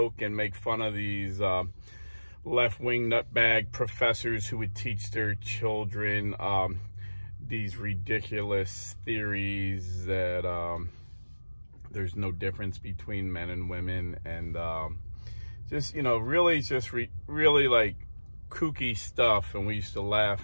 and make fun of these left-wing nutbag professors who would teach their children these ridiculous theories that there's no difference between men and women, and just, you know, really just really like kooky stuff. And we used to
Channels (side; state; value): both; inverted; correlation -1.00